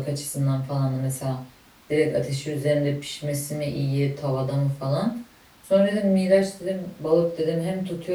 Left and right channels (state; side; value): identical; both; correlation 1.00